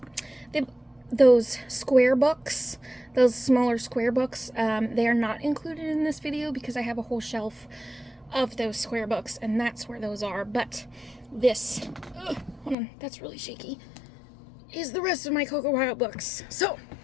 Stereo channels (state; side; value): drops out; right; at 12.8 s